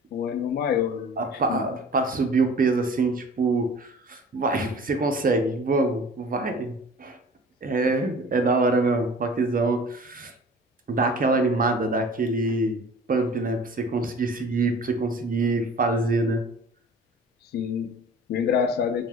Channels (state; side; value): normal; both; correlation 0.44